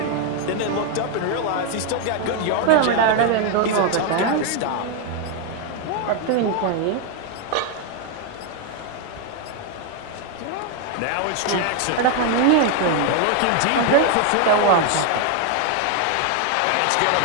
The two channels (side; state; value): both; different; correlation 0.01